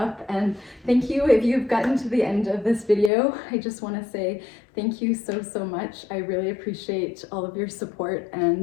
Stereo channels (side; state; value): right; drops out; at 3.1 s